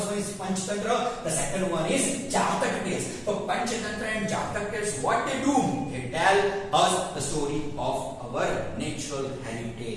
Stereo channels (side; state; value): both; identical; correlation 1.00